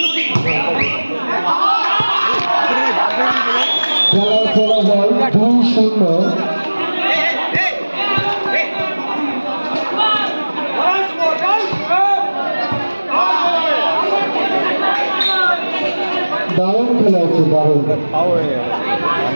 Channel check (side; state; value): both; inverted; correlation -1.00